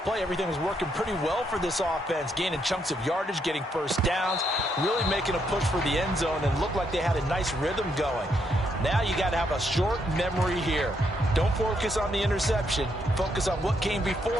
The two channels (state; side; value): normal; both; correlation 0.76